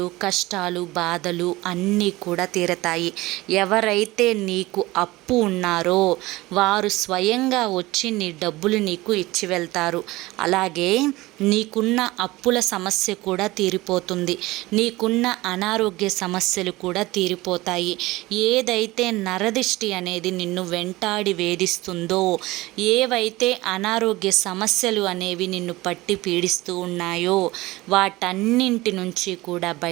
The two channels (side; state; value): left; quieter; 19.7 dB